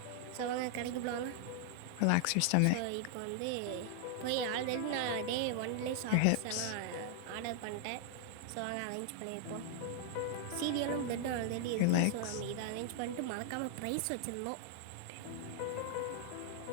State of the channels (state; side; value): different; both; correlation 0.00